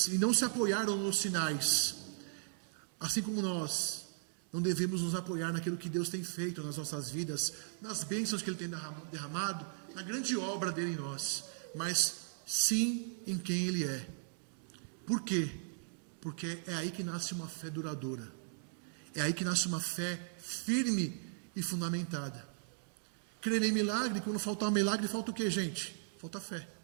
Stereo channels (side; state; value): left; silent; digital silence